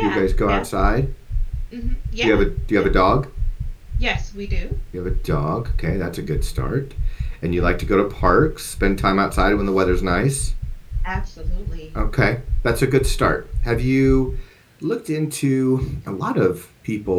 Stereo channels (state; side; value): identical; both; correlation 1.00